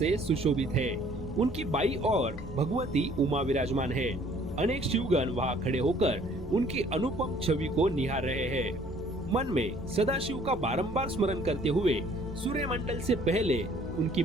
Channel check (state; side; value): normal; both; correlation 0.57